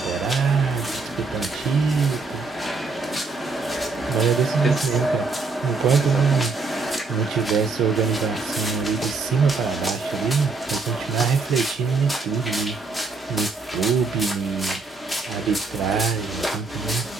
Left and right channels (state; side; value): quieter; left; 4.1 dB